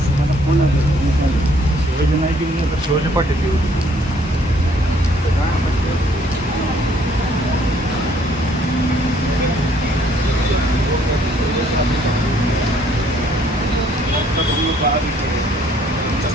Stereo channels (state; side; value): normal; both; correlation 0.64